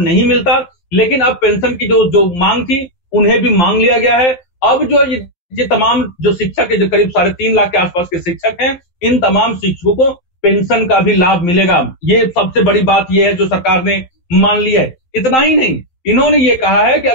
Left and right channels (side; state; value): right; late; 12 ms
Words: नहीं मिलता, लेकिन अब पेंशन की जो मांग थी उन्हें भी मांग लिया गया है। अब जो ये तमाम जो शिक्षक है, जो करीब 3.5 लाख के आसपास के शिक्षक हैं, इन तमाम शिक्षकों को पेंशन का भी लाभ मिलेगा। ये सबसे बड़ी बात ये है जो सरकार ने मान ली है। इतना ही नहीं, इन्होंने ये कहा है कि